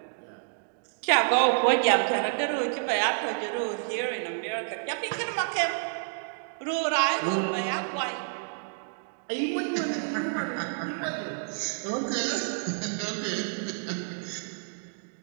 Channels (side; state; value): left; silent; digital silence